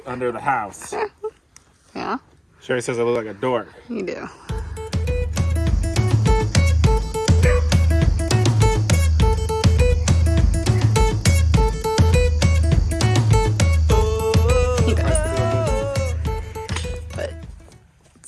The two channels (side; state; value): both; identical; correlation 1.00